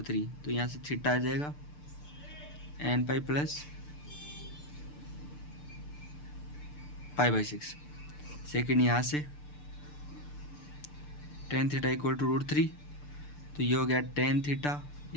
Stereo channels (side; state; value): right; late; 6.8 ms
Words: तो यहाँ से थीटा आ जाएगा nπ प्लस π/6। सेकेंड यहाँ से tan थीटा इक्वल टू √3, तो ये हो गया tan theta